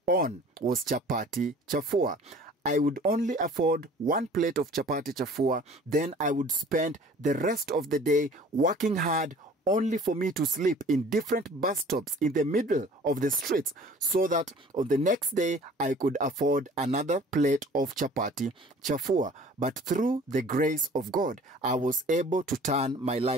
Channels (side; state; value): both; normal; correlation 0.49